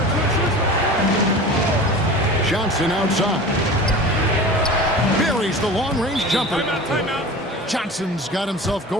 Johnson outside. Buries the long-range jumper. Timeout. Johnson's got himself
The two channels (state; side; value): normal; both; correlation 0.36